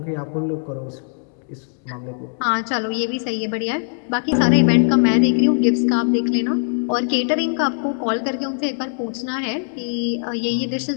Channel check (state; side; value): silent; right; digital silence